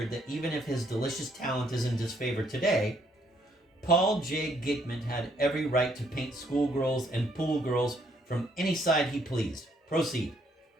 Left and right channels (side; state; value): both; normal; correlation 0.70